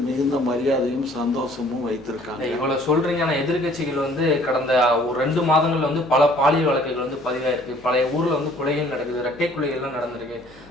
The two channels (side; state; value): both; normal; correlation 0.56